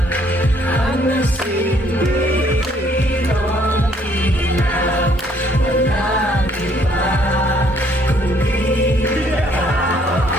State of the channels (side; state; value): both; normal; correlation 0.65